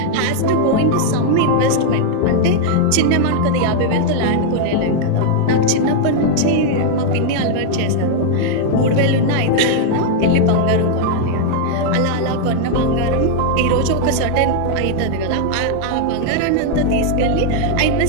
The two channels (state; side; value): different; both; correlation 0.00